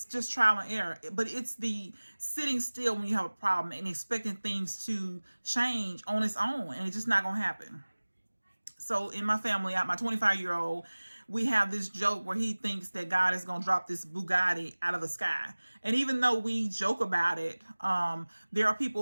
just trial and error. But it's the sitting still when you have a problem and expecting things to change on its own, and it's just not gonna happen. So in my family, my 25-year-old, we have this joke where he thinks that God is going to drop this Bugatti out of the sky. And even though we joke about it, there are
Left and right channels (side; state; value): both; inverted; correlation -1.00